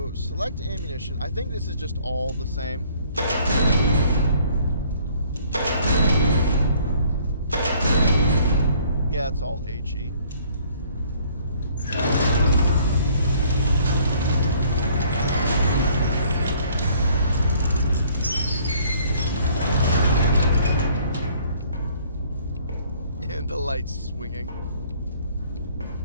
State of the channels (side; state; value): both; inverted; correlation -0.59